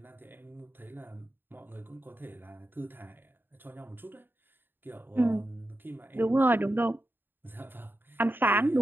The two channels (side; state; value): left; late; 0.096 ms